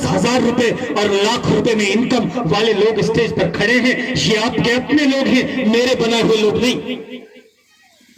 रुपए और लाख रुपए में इनकम वाले लोग स्टेज पर खड़े हैं। ये आपके अपने लोग हैं, मेरे बनाए हुए लोग नहीं।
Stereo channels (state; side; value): identical; both; correlation 1.00